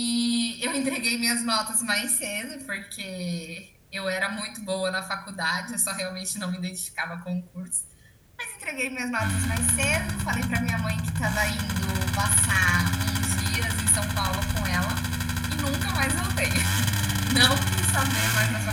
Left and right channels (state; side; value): identical; both; correlation 1.00